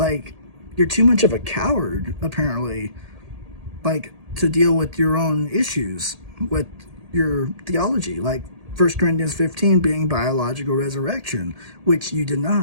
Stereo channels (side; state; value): left; late; 1.8 ms